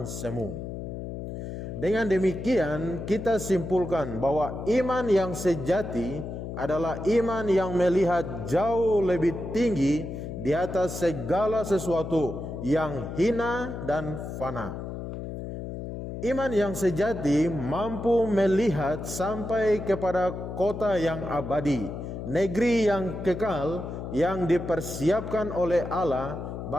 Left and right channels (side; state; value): left; noise; hum, 7 dB below the sound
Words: semu. Dengan demikian kita simpulkan bahwa iman yang sejati adalah iman yang melihat jauh lebih tinggi di atas segala sesuatu yang hina dan fana. Iman yang sejati mampu melihat sampai kepada kota yang abadi, negeri yang kekal yang dipersiapkan oleh Allah